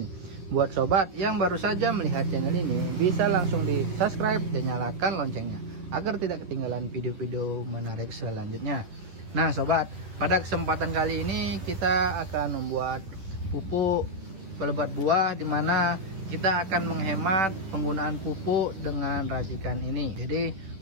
Buat sobat yang baru saja melihat channel ini, bisa langsung di subscribe dan nyalakan loncengnya agar tidak ketinggalan video-video menarik selanjutnya. Nah sobat, pada kesempatan kali ini kita akan membuat pupuk pelebat buah, dimana kita akan menghemat penggunaan pupuk dengan racikan ini. Jadi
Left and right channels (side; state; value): left; late; 10 ms